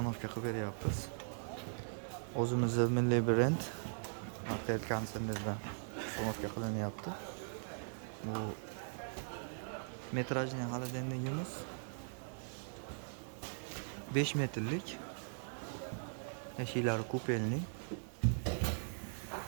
qilib beryapmiz. O'zimizning milliy brend Martel konsernidan ustanovka qilinyapti. Bu metrajli xolodilnigimiz 5 metrlik, eshiklari kupenli,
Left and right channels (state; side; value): silent; left; digital silence